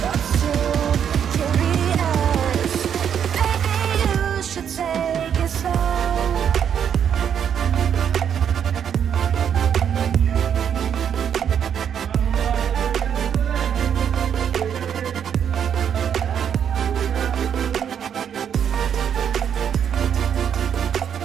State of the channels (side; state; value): left; quieter; 8.4 dB